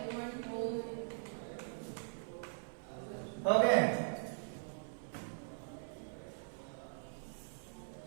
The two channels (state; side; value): silent; left; 50 dB below the other